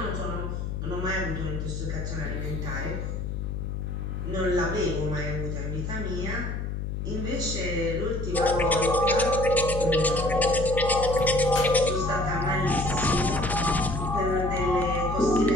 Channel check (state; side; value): noise; left; hum, 4 dB below the sound